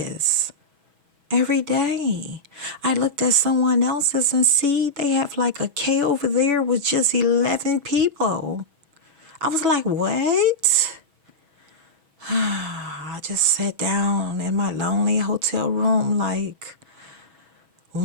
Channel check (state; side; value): late; left; 6.2 ms